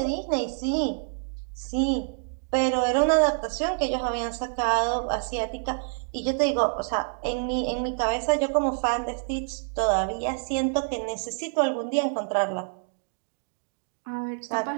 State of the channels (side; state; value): left; silent; digital silence